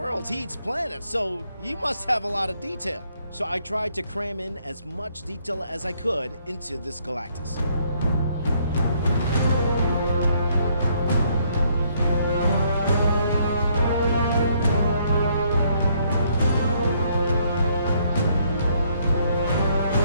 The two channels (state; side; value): inverted; both; correlation -0.69